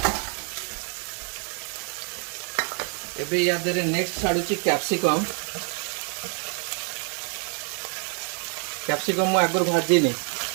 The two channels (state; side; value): quieter; left; 39.6 dB